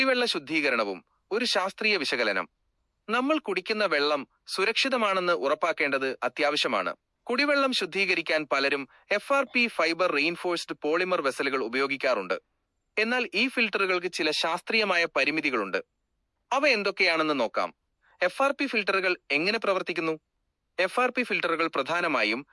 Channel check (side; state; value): both; identical; correlation 1.00